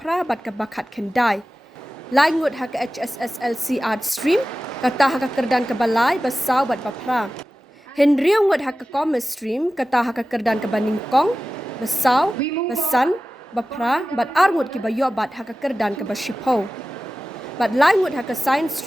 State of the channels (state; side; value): normal; both; correlation 0.95